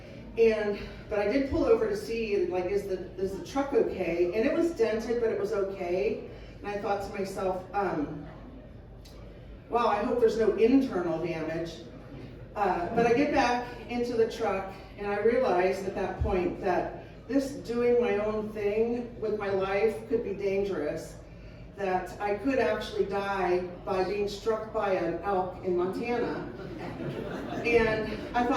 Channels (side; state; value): both; identical; correlation 1.00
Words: But I did pull over to see, like, is the truck okay? And it was dented, but it was okay. And I thought to myself, wow, I hope there's no internal damage. But I get back into the truck, and I realized at that point that this doing my own thing with my life could be dangerous, that I could actually die by being struck by an elk in Montana. And I